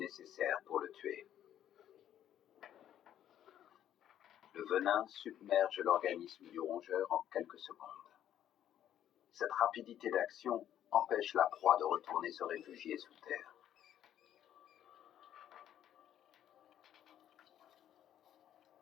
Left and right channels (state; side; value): quieter; right; 10.9 dB